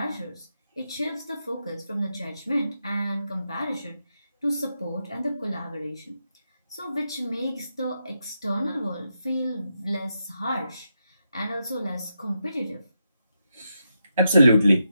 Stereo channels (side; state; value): both; inverted; correlation -0.84